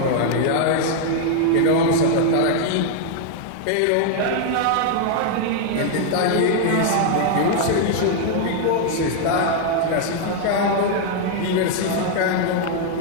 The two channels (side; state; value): both; different; correlation 0.00